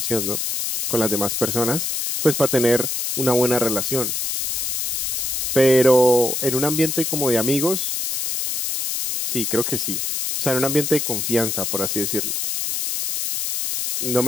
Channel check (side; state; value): left; noise; hiss, 1 dB below the sound